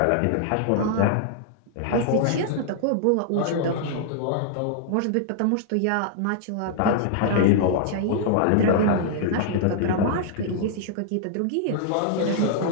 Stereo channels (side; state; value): both; different; correlation -0.01